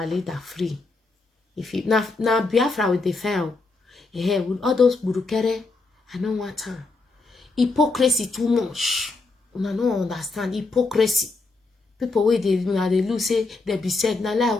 leader free. If you now Biafra with the fail, yeah, with all those burukere, I don't want time. Hypocrisy too much. I don't understand hypocrisy. People where they lose say they be said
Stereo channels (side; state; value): right; quieter; 3.6 dB